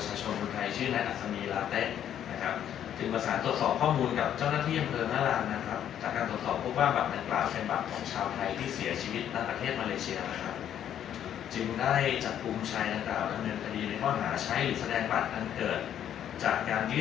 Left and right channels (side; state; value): right; quieter; 10.1 dB